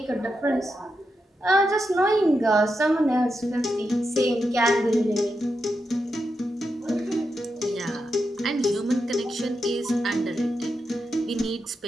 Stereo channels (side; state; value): both; normal; correlation 0.87